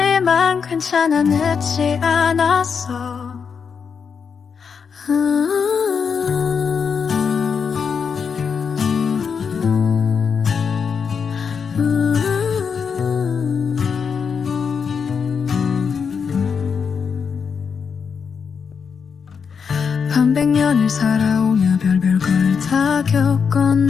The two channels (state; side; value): quieter; right; 6.2 dB